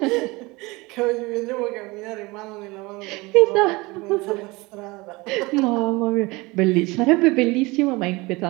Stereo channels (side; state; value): left; quieter; 23.3 dB